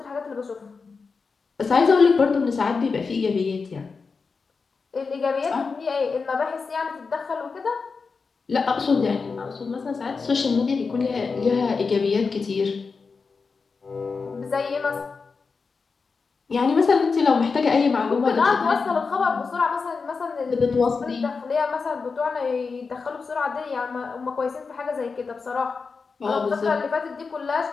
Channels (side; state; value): right; quieter; 4.8 dB